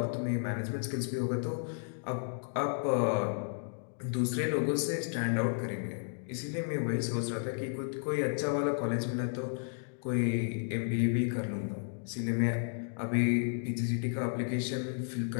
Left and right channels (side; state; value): right; silent; digital silence